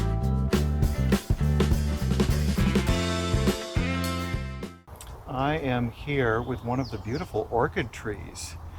I am here with one of the beautiful orchid trees.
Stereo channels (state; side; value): identical; both; correlation 1.00